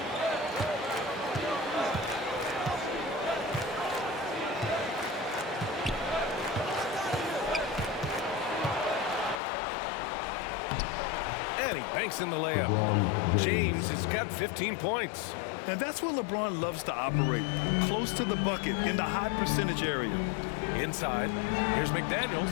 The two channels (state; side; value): drops out; right; at 9.3 s